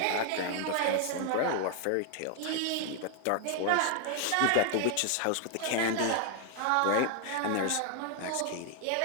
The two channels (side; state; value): both; different; correlation 0.00